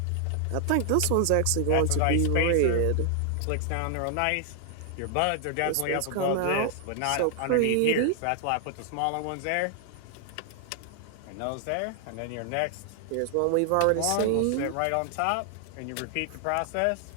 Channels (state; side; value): different; both; correlation 0.00